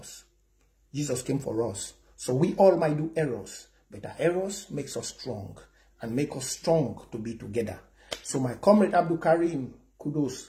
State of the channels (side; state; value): both; identical; correlation 1.00